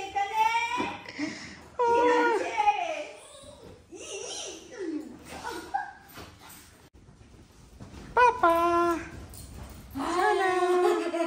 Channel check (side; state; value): both; identical; correlation 1.00